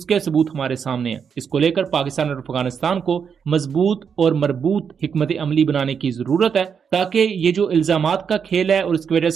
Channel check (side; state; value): left; quieter; 6.8 dB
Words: کے ثبوت ہمارے سامنے ہیں۔ اس کو لے کر پاکستان اور افغانستان کو مضبوط اور مربوط حکمت عملی بنانے کی ضرورت ہے، تاکہ یہ جو الزامات کا کھیل ہے اور اس کی وجہ